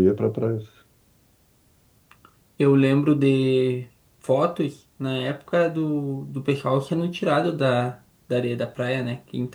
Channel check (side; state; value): both; identical; correlation 1.00